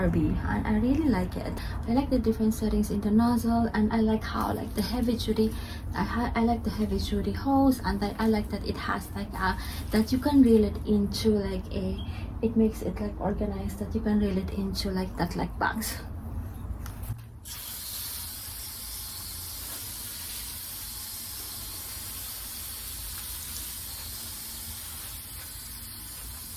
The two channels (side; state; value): both; identical; correlation 1.00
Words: and I really like it. I like the different settings in the nozzle, and I like how like the heavy duty, I like the heavy duty hose, and I like that it has like that you can reel it into like it makes it like organized, that you can reel it into like that, like bags.